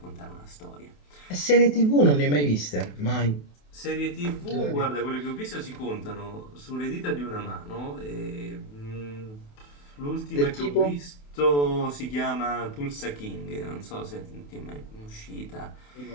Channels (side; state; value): right; late; 28 ms